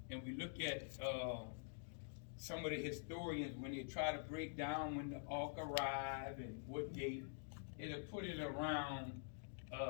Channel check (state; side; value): silent; right; digital silence